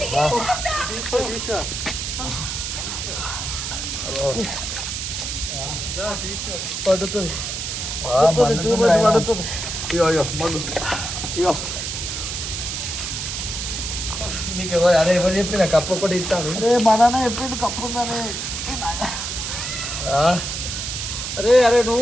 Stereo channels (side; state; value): right; noise; hiss, 4 dB below the sound